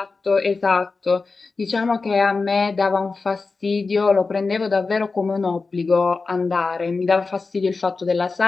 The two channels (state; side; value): quieter; right; 4.1 dB